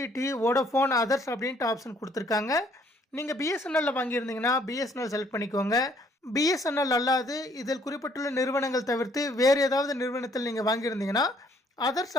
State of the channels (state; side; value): normal; both; correlation 0.64